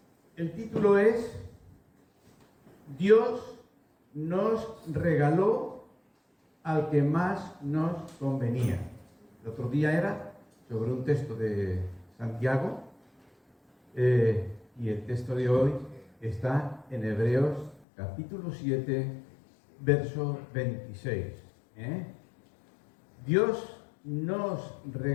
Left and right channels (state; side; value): drops out; right; at 17.9 s